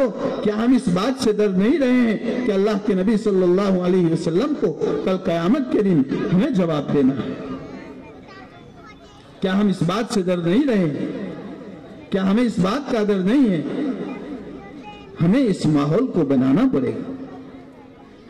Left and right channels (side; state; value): both; identical; correlation 1.00